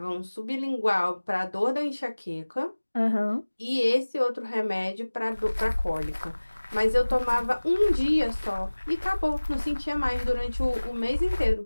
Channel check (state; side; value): inverted; both; correlation -1.00